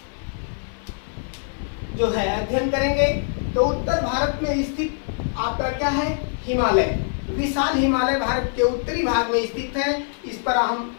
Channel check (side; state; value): right; silent; 56 dB below the other